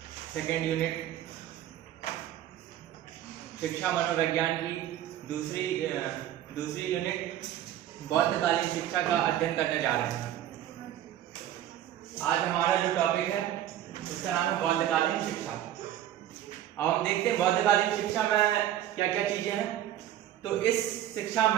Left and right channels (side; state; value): left; quieter; 12.0 dB